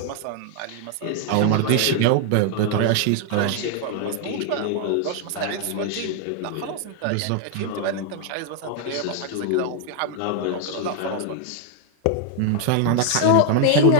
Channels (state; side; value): different; both; correlation 0.00